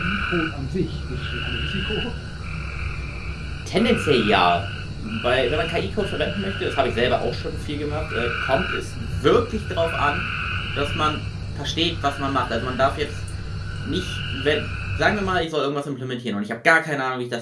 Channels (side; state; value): both; identical; correlation 1.00